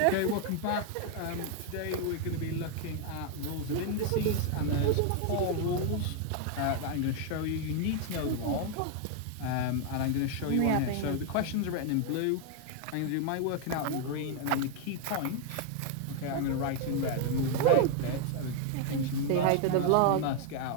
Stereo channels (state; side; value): different; both; correlation 0.00